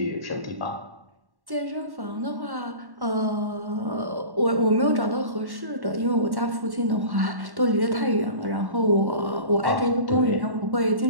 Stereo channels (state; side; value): late; left; 1.1 ms